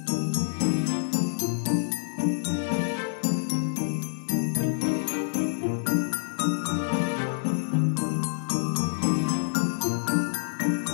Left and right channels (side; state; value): right; silent; digital silence